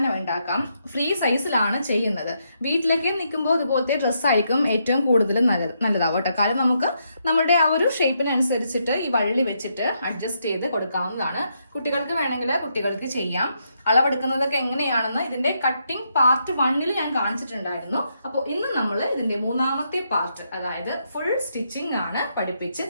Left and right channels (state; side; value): inverted; both; correlation -0.78